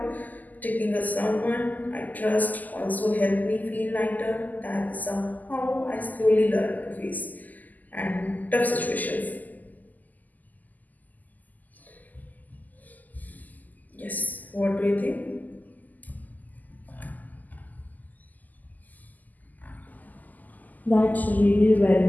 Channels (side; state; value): right; late; 0.082 ms